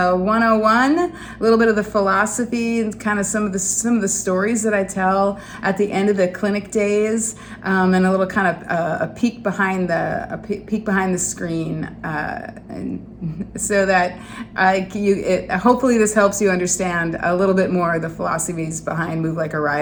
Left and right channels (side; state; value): both; identical; correlation 1.00